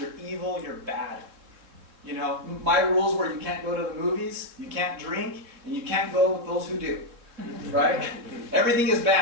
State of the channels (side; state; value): left; late; 3.6 ms